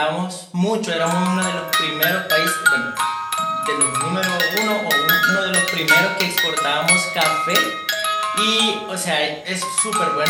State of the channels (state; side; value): identical; both; correlation 1.00